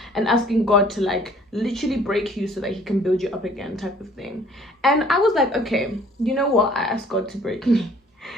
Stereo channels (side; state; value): both; normal; correlation 0.56